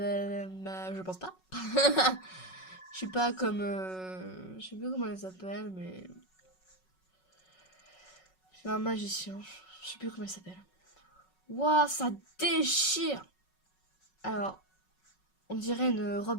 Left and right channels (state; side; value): late; right; 5.4 ms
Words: pense pas. Je suis pas comme... Je sais plus comment elle s'appelle, mais... Je suis un magicien. Je sais plus comment elle s'appelle. Waouh, ça déchire! Alors, on dirait une